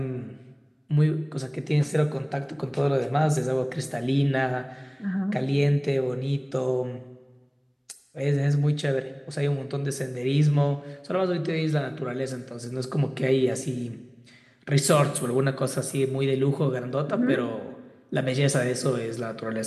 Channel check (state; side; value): identical; both; correlation 1.00